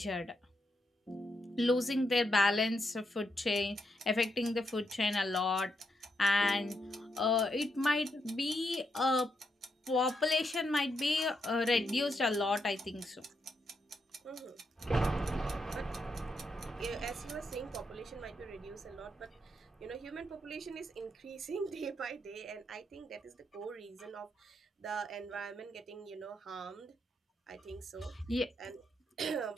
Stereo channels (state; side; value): normal; both; correlation 0.81